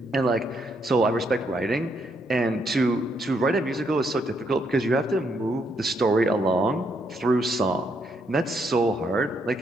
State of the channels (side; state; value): both; normal; correlation 0.75